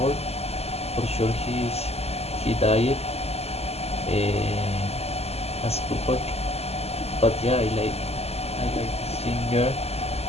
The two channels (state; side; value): late; right; 0.30 ms